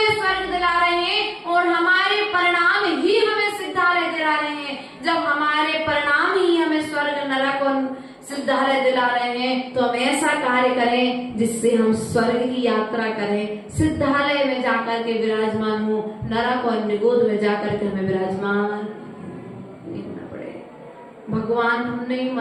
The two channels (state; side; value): identical; both; correlation 1.00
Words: स्वर्ग दिला रहे हैं और हमारे परिणाम ही हमें सिद्धालय दिला रहे हैं। जब हमारे परिणाम ही हमें स्वर्ग, नरक और सिद्धालय दिला रहे हैं तो हम ऐसा कार्य करें जिससे हम स्वर्ग की यात्रा करें, सिद्धालय में जाकर के विराजमान हो, नरक और निगोद में जाकर के हमें विराजमान नहीं होना पड़े। भगवान हमने ही